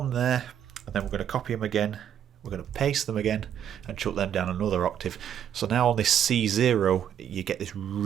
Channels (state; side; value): quieter; left; 9.5 dB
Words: there, and then we're going to copy them again. We're going to paste them again and chuck them down another octave. So now on this C0, you get this